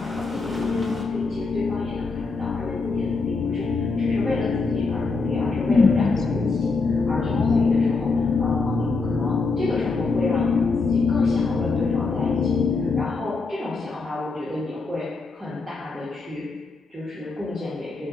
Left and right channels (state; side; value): quieter; right; 4.1 dB